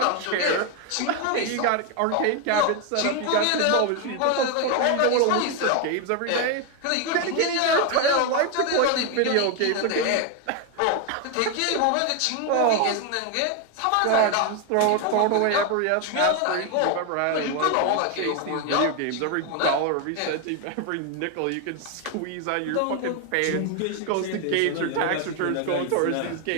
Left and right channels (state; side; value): different; both; correlation 0.01